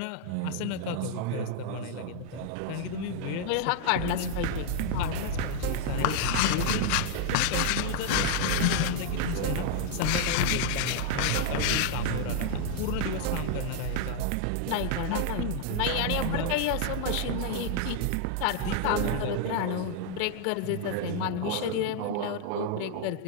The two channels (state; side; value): different; both; correlation 0.00